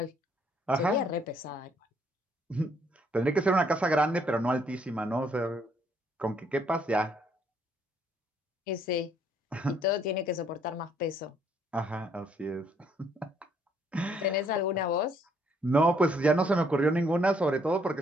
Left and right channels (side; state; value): both; normal; correlation 0.67